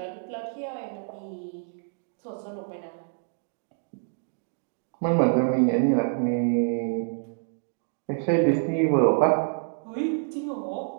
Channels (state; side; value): silent; left; digital silence